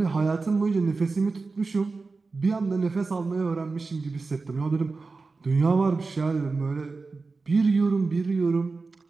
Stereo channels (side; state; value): left; quieter; 4.0 dB